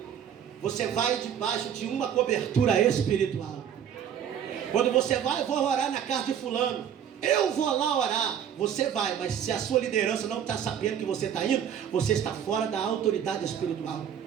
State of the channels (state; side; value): quieter; left; 8.9 dB